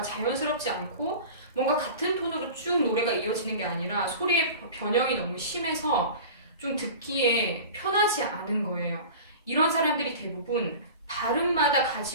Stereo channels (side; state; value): both; inverted; correlation -0.36